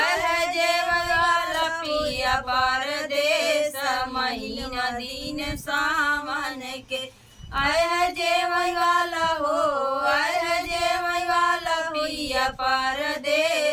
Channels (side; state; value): both; identical; correlation 1.00